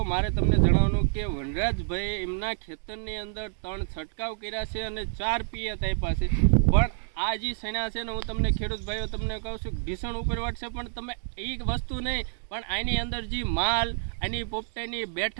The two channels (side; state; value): left; silent; digital silence